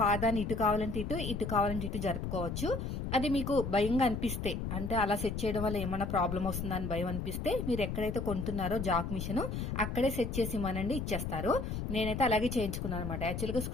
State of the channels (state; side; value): noise; left; rumble, 4 dB below the sound